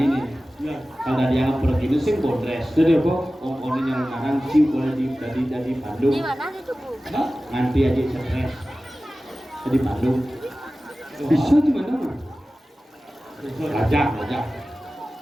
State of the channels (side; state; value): both; normal; correlation 0.96